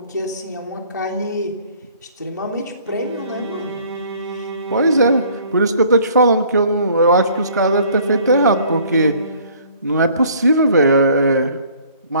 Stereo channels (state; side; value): inverted; both; correlation -0.56